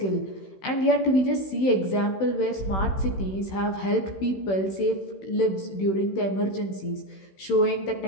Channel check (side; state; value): right; late; 16 ms